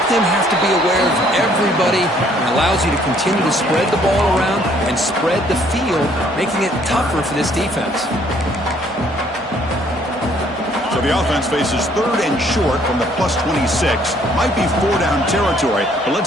them have to be aware of everybody, and allows you to continue to spread the ball around and spread the field, making it tougher for this defense. So the offense faces 3rd and short from the +26. Might be 4-down territory, but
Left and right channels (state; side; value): normal; both; correlation 0.63